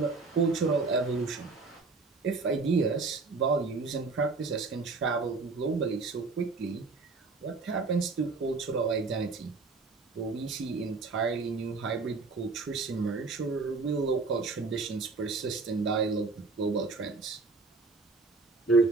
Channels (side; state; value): left; quieter; 4.1 dB